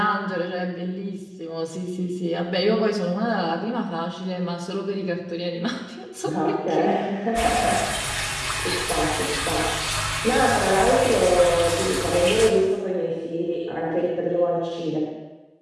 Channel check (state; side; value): identical; both; correlation 1.00